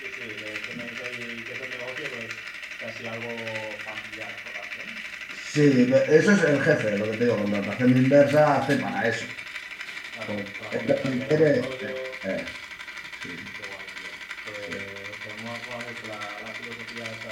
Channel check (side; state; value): both; identical; correlation 1.00